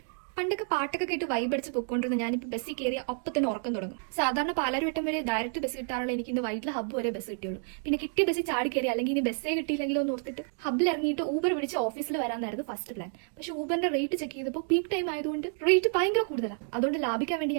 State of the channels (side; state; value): left; silent; 57 dB below the other